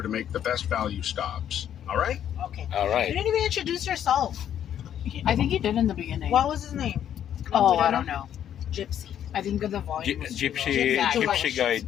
to make the best value stops. All right? Okay. all You right. didn't even introduce yourself. I think he did in the beginning. What was his name? Oh, we I don't don't know. Gypsy. I think the volume was too low. Gypsy, Gypsy Gypsy guide.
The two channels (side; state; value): right; quieter; 10.1 dB